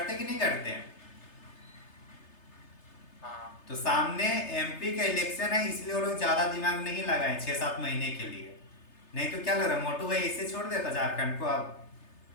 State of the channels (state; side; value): late; right; 3.3 ms